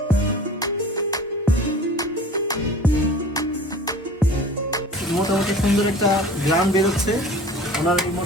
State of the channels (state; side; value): normal; both; correlation 0.42